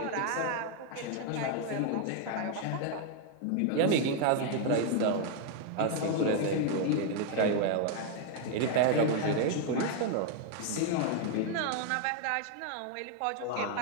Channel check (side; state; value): both; different; correlation 0.00